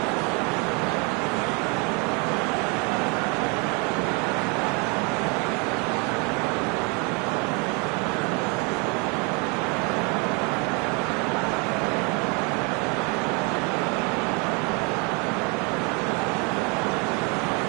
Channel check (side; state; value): left; quieter; 31.8 dB